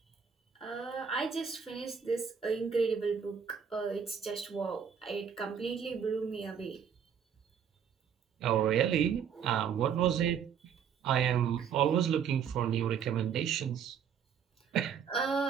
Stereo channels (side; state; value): left; quieter; 7.6 dB